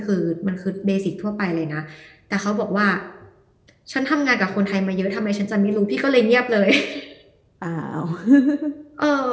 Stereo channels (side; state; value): both; identical; correlation 1.00